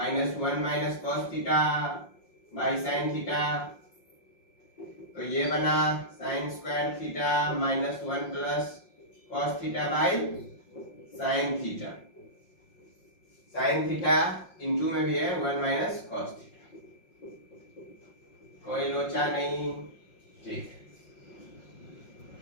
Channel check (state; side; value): late; right; 5.6 ms